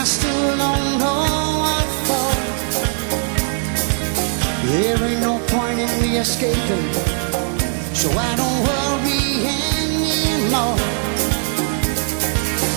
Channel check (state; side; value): silent; left; 66 dB below the other